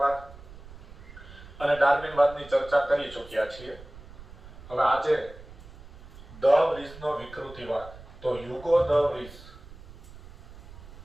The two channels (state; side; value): noise; right; rumble, 17 dB below the sound